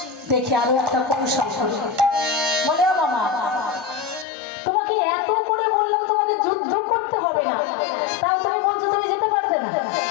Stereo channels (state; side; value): drops out; right; at 4.2 s